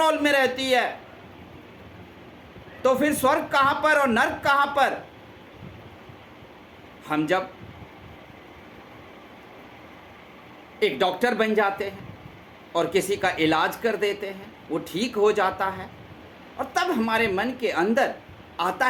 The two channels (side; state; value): both; identical; correlation 1.00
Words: में रहती है। तो फिर स्वर्ग कहां पर और नरक कहां पर? हम जब एक डॉक्टर बन जाते हैं और किसी का इलाज कर देते हैं, वो ठीक हो जाता है, और तब हमारे मन के अंदर आता